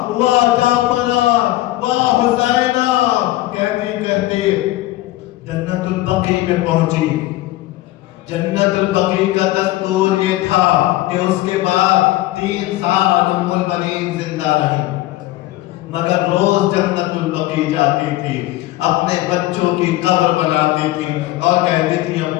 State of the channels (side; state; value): right; quieter; 16.8 dB